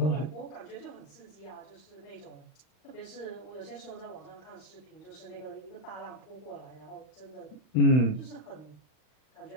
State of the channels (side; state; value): right; late; 39 ms